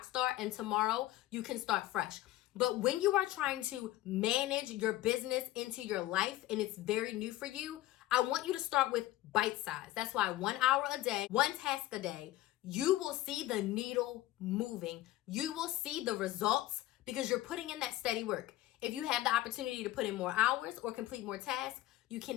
star, and tomorrow you can start fresh. But when you are trying to manage your business into your life and it's very new for you, I want you to start with bite size. That's why 1 hour a day, one task a day, you will see the needle moving. You will see the results because you're putting in that steady work. If you have the opportunity to put in more hours or complete more tasks, you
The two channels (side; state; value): right; quieter; 15.8 dB